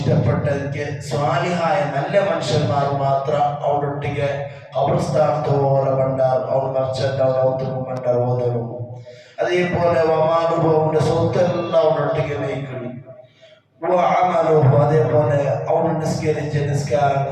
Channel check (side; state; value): both; identical; correlation 1.00